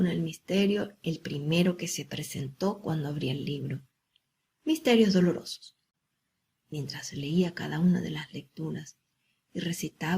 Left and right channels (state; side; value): identical; both; correlation 1.00